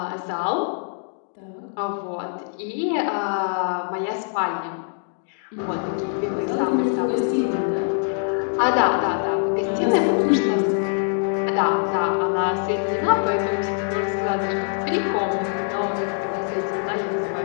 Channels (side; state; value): right; silent; digital silence